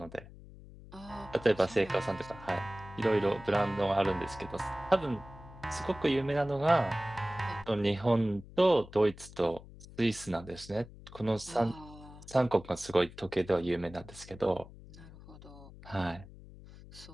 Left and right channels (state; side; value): noise; left; hum, 18 dB below the sound